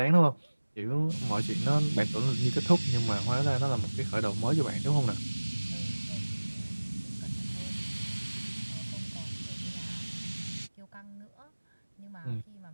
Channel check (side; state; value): both; inverted; correlation -1.00